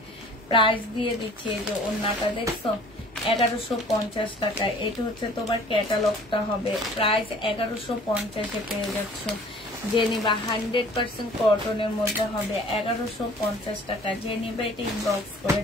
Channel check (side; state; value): both; normal; correlation 0.50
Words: প্রাইস দিয়ে দিচ্ছি, এই যে ওড়নাটা দেখছো 1150 টাকা। এটা হচ্ছে তোমার ক্যাটালগটা হবে। প্রাইস 1150-এ পেয়ে যাচ্ছ। যে নিবা 100% কটনের মধ্যে হবে, 1150 টাকা। যে নিবা এটা ইনবক্স করে